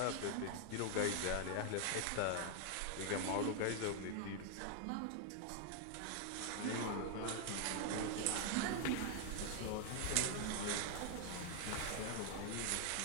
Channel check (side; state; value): both; different; correlation 0.00